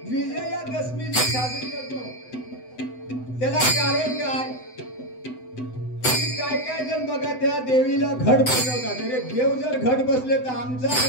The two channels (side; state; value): right; late; 7.9 ms